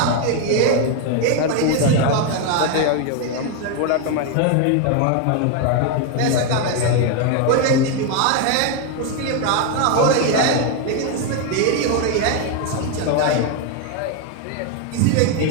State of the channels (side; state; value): both; different; correlation 0.01